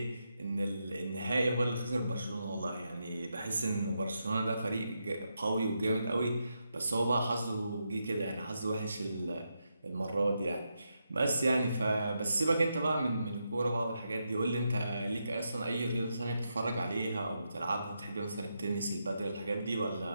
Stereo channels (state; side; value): inverted; both; correlation -0.84